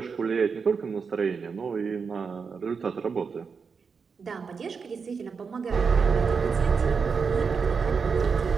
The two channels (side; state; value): left; quieter; 5.5 dB